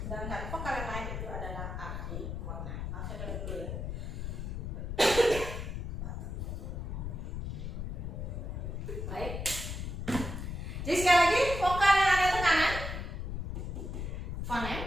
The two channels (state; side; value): noise; left; rumble, 4 dB below the sound